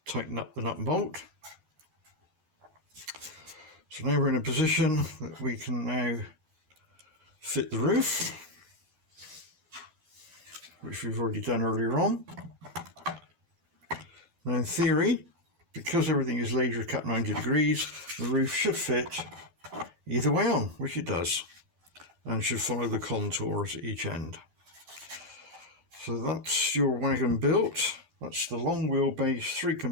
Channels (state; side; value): late; left; 12 ms